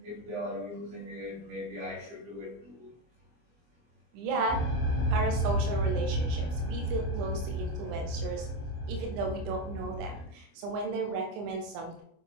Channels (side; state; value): left; late; 25 ms